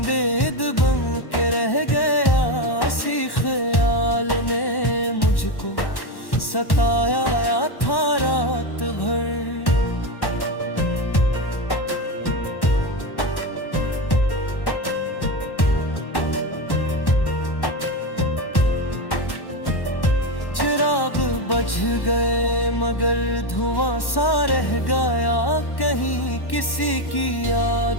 बन के रह गया, इसी ख्याल ने मुझको सताया था रात भर। बज गए मगर धुआं सा रह गया, कहीं किसी की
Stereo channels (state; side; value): late; right; 1.1 ms